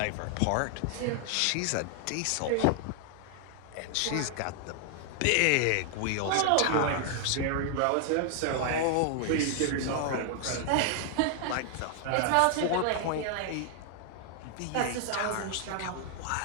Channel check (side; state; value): both; different; correlation 0.00